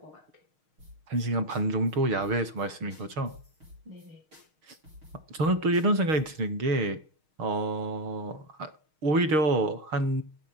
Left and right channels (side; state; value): left; late; 6.4 ms